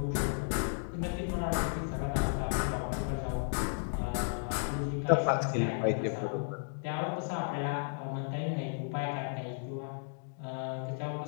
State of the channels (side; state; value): right; silent; digital silence